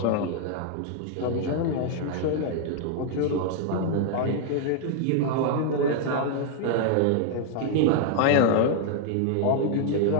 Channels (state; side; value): different; both; correlation 0.00